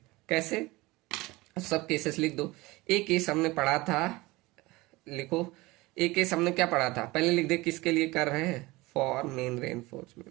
कैसे? सब केसेस लिख दो। एक केस हमने पढ़ा था, लिखो। एक केस हमने क्या पढ़ा था, पहले लिख दे किसके लिए कर रहे हैं, फॉर मेन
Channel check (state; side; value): quieter; left; 21.3 dB